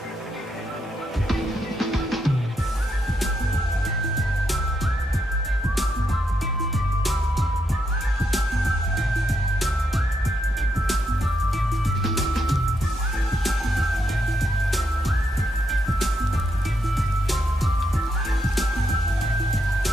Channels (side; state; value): both; normal; correlation 0.80